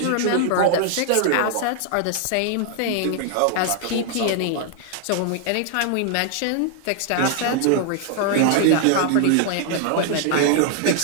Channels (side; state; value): both; different; correlation 0.00